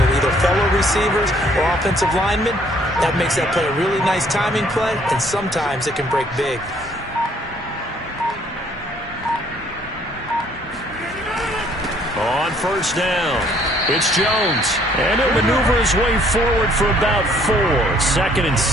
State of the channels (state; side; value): normal; both; correlation 0.62